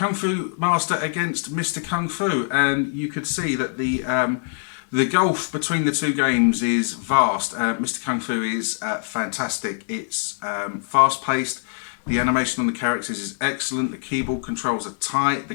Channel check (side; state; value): right; silent; digital silence